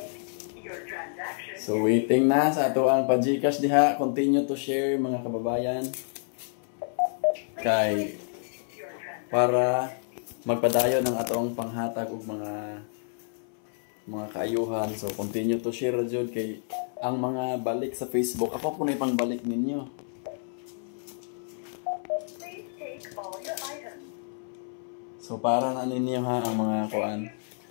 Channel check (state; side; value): silent; right; 59 dB below the other